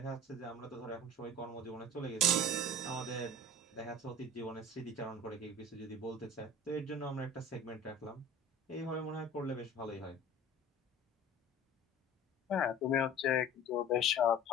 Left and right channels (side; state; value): both; normal; correlation 0.41